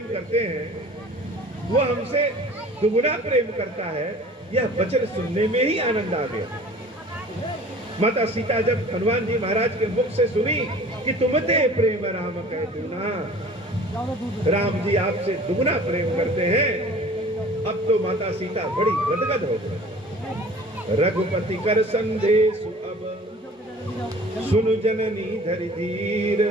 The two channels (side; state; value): both; normal; correlation 0.46